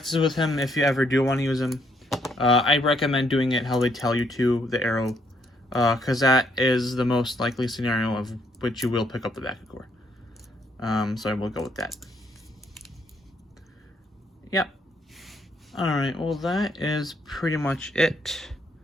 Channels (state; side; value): normal; both; correlation 0.71